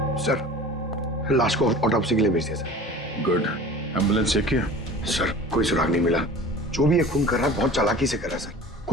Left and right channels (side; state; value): both; normal; correlation 0.40